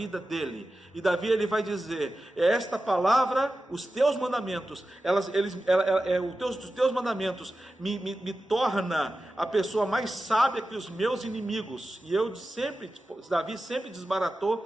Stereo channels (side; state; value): both; normal; correlation 0.93